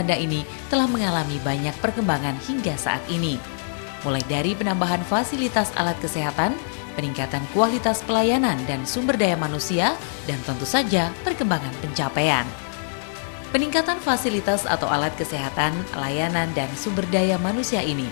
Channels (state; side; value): silent; right; digital silence